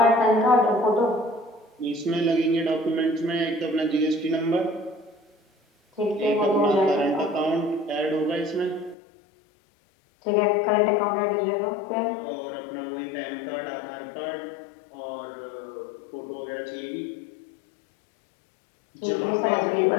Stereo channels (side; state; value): right; drops out; at 9.0 s